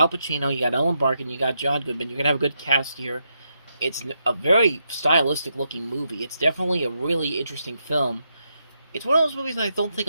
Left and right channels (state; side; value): inverted; both; correlation -0.82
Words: Pacino, you got Ellen Barkin, you got John Goodman. You're gonna have a good cast here. It's a very stylistic looking movie. It's definitely a really interesting film. It's one of those movies that I don't think